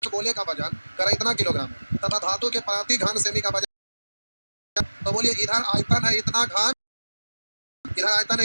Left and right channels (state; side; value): inverted; both; correlation -1.00